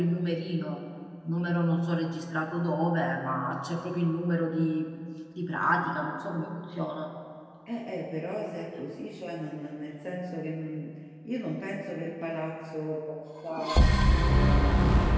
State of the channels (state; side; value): identical; both; correlation 1.00